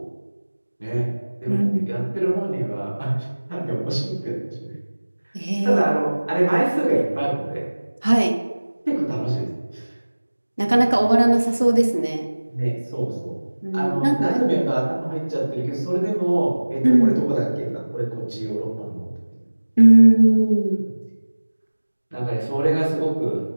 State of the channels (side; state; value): both; inverted; correlation -1.00